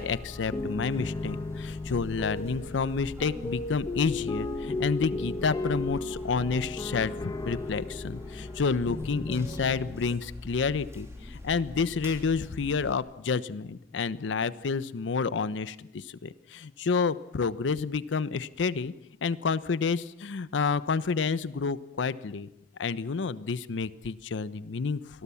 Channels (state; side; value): quieter; right; 4.4 dB